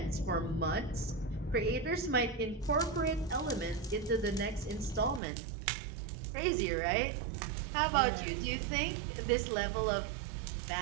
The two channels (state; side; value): drops out; left; at 5.2 s